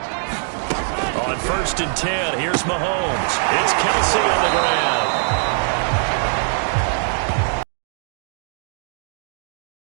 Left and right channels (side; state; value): left; silent; digital silence